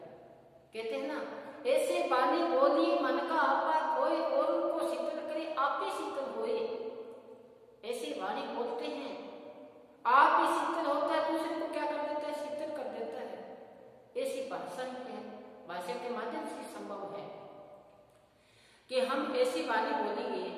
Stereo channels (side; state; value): both; identical; correlation 1.00